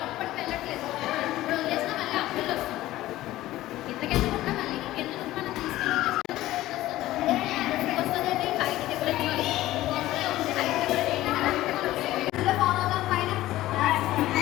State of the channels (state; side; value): quieter; right; 15.8 dB